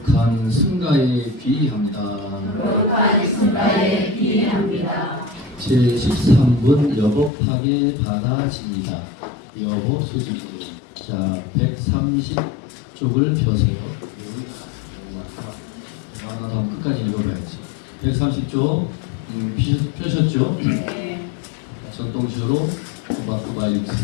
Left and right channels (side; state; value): right; drops out; at 7.3 s